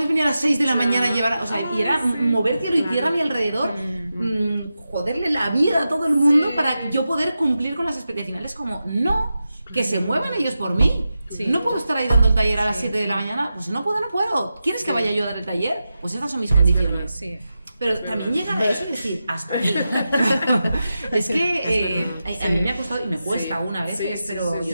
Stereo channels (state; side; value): inverted; both; correlation -0.91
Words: venir a las 6 de la mañana a llevar? O sea, y era mover cielo y tierra a mi alrededor, joderle la vida a todo el mundo para yo poder cumplir con las expectativas. Como, no, que se muevan ellos por mí. No puedo estar ahí dando el taller a las 7 de la mañana, pues no puedo. ¿Quieres que vaya yo a dar el taller? Pues estas son mis condiciones. Pero también llegar a eso y decir, hasta aquí. Es que a mí me ha costado y me cuesta una vez, pero